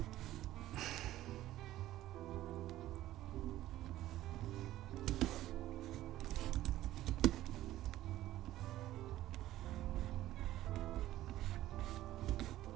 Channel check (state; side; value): quieter; left; 14.6 dB